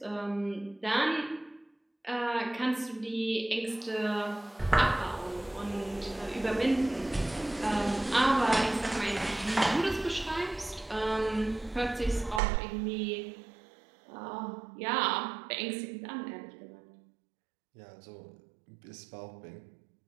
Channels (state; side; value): drops out; left; at 12.4 s